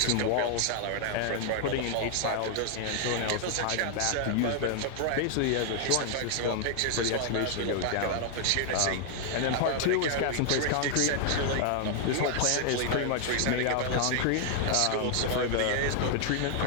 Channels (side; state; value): both; different; correlation 0.00